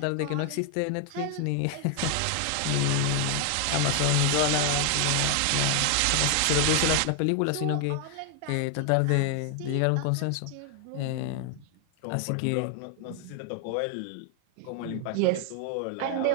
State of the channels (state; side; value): different; both; correlation 0.00